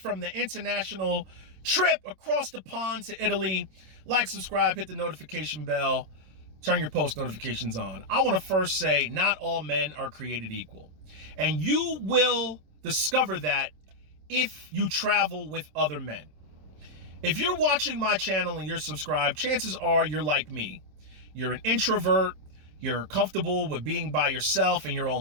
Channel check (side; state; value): left; late; 27 ms